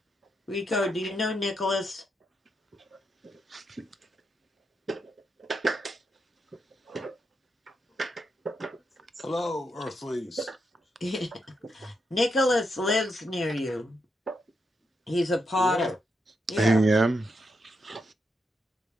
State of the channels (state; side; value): normal; both; correlation 0.82